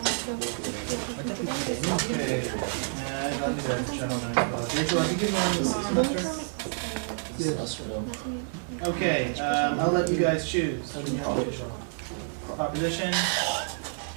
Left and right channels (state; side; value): silent; left; 59 dB below the other